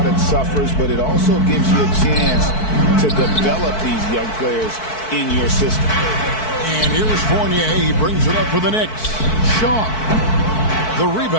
suffers, but it also gives you a chance to develop these young players in your system. And here's Fournier. He brings it up for the Knicks. Shaw. The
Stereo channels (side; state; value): right; late; 4.6 ms